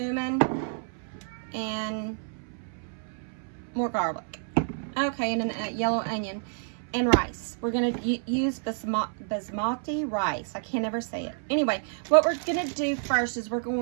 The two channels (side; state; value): left; silent; 59 dB below the other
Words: and more garlic. Okay, and a yellow onion and rice. We're going to use basmati rice. I can't ever say it. Anyway, what we're going to do first is we're